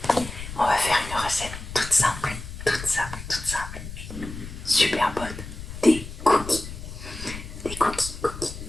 On va faire une recette toute simple, super bonne, des cookies. Des cookies.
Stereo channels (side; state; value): left; noise; rumble, 10 dB below the sound